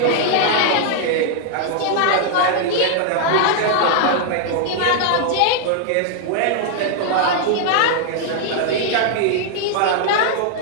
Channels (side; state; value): both; different; correlation 0.00